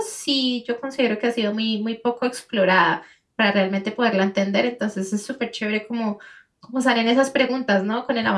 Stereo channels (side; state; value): both; identical; correlation 1.00